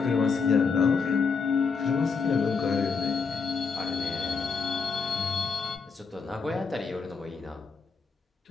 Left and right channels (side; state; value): right; quieter; 5.1 dB